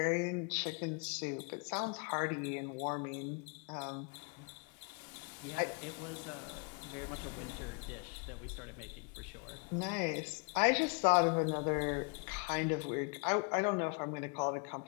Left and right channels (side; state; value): right; quieter; 35.4 dB